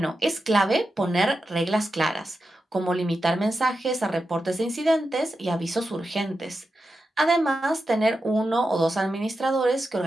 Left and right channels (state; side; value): normal; both; correlation 0.89